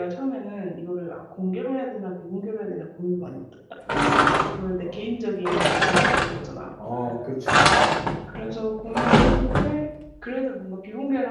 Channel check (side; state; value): both; identical; correlation 1.00